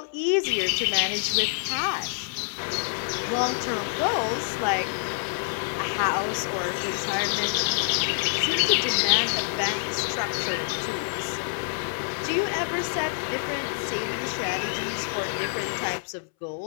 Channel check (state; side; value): silent; right; 60 dB below the other